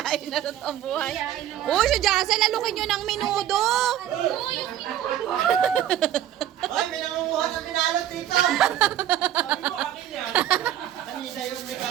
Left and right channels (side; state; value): left; quieter; 11.7 dB